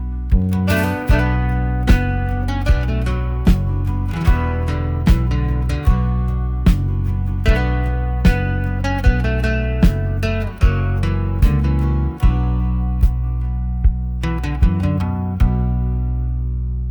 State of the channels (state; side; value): identical; both; correlation 1.00